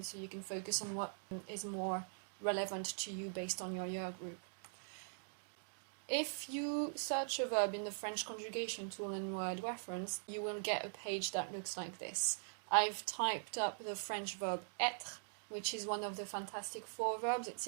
so you can focus on what is more relevant to you based on your year group. If you search a verb in the French conjugation tool in Wordreference, you will get a page that looks like this. I've typed up the French verb être, which is one of the fantastic 4 verbs. It's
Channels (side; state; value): left; silent; digital silence